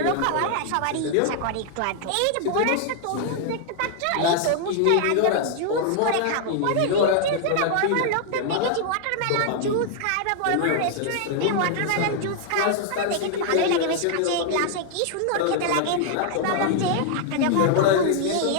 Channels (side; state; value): both; different; correlation -0.01